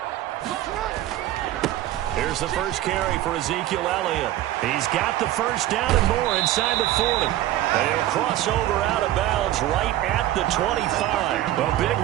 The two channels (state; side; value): quieter; left; 14.1 dB